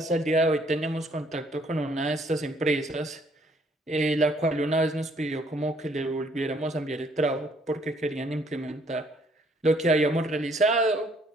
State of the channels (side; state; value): both; normal; correlation 0.64